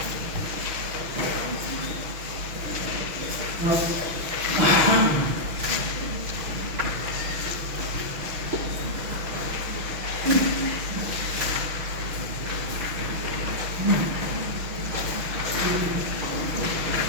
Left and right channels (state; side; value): late; left; 6.2 ms